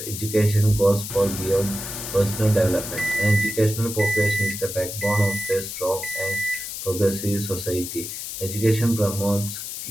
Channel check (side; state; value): left; noise; hiss, 7 dB below the sound